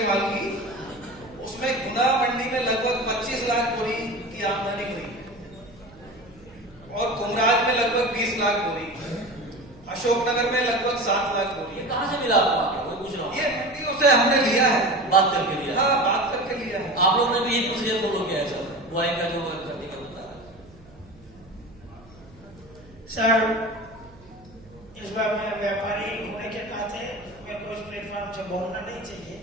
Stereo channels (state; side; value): noise; right; hum, 24 dB below the sound